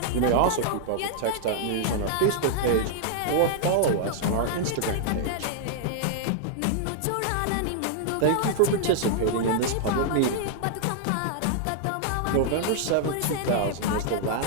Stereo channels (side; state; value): both; different; correlation -0.01